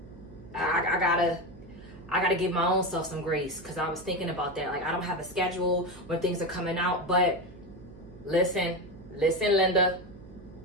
I gotta give my own self some grace because I was thinking about that. Like, I don't have a schedule when things are coming out, but Listen, Linda.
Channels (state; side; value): noise; right; hum, 19 dB below the sound